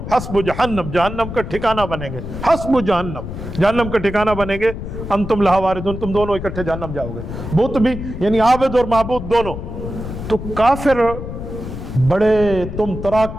حسب جہنم، جہنم کا ٹھکانہ بنیں گے، حسب جہنم، جہنم کا ٹھکانہ بنیں گے، انتم لہا واردون، تم دونوں اکٹھے جہنم جاؤ گے، بت بھی یعنی عابد اور معبود دونوں۔ تو کافر بڑے تم تراک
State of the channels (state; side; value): noise; left; rumble, 8 dB below the sound